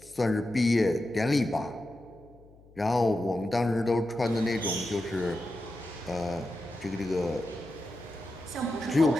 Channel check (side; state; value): left; noise; hum, 25 dB below the sound